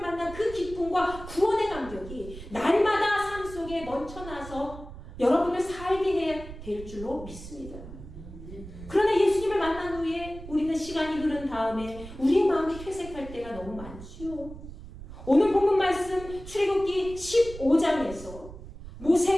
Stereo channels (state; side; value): noise; right; rumble, 14 dB below the sound